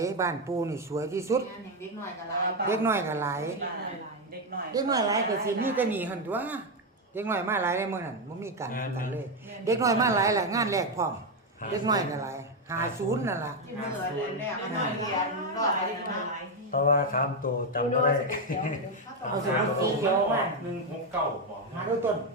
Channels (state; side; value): normal; both; correlation 0.06